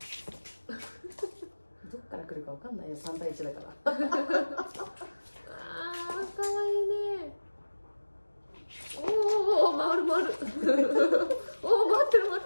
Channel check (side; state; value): both; inverted; correlation -1.00